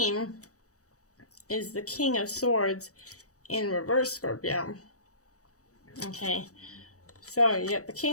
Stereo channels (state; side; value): late; right; 0.66 ms